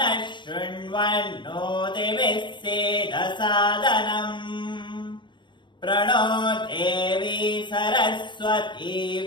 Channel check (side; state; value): right; late; 0.23 ms